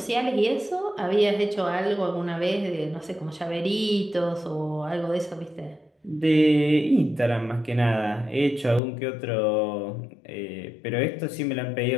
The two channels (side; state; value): right; drops out; at 8.8 s